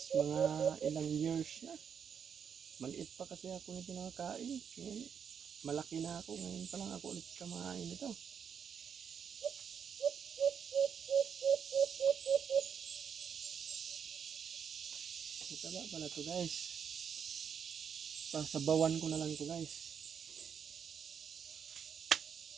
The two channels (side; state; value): left; quieter; 7.3 dB